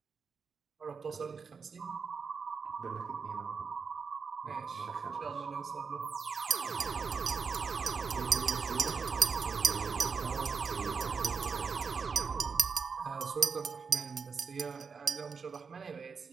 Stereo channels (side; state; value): left; quieter; 5.5 dB